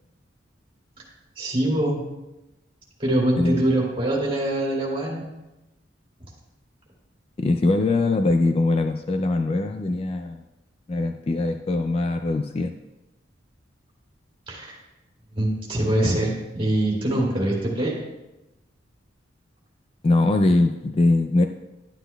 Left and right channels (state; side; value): normal; both; correlation 0.82